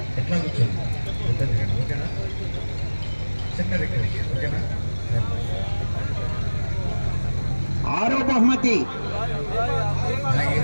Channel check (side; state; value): both; inverted; correlation -1.00